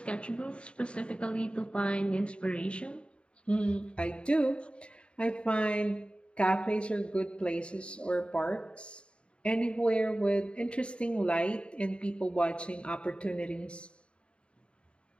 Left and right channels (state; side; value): late; right; 0.056 ms